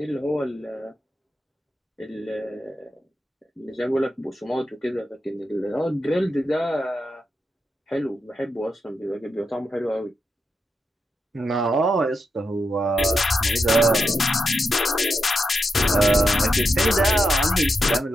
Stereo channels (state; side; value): normal; both; correlation 0.86